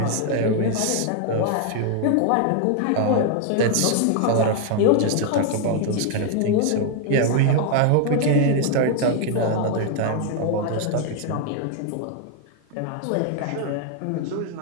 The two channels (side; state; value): both; different; correlation 0.00